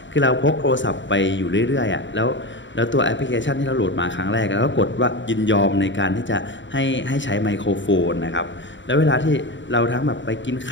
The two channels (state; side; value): late; right; 0.54 ms